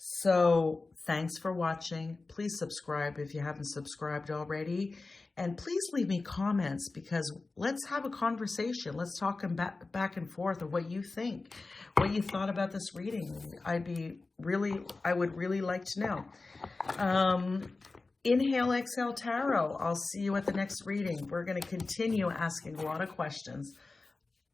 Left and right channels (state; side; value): quieter; right; 3.6 dB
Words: thanks for watching. Please subscribe if you haven't subscribed already. And please leave me comments because let's have a conversation. Let's talk back and forth of what you think, what you thought about this reading. I would really like to know. Inhale, exhale, tarot. I'll see you at the next reading. We're going to continue asking a lot of questions.